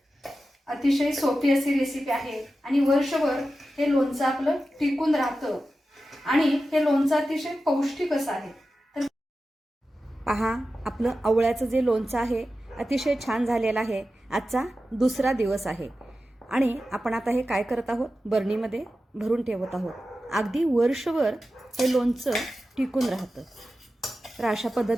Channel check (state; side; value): normal; both; correlation 0.93